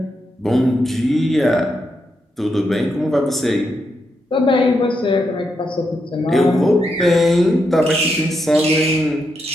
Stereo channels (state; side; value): normal; both; correlation 0.83